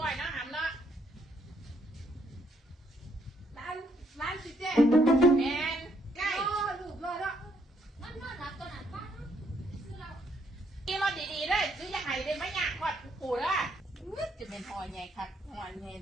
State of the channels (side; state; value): both; normal; correlation 0.71